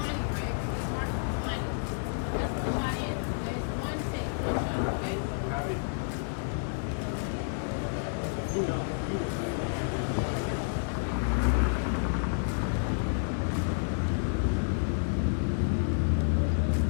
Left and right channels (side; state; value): right; silent; digital silence